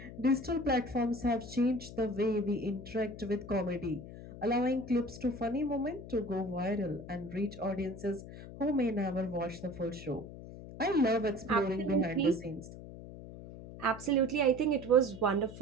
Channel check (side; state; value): left; noise; hum, 13 dB below the sound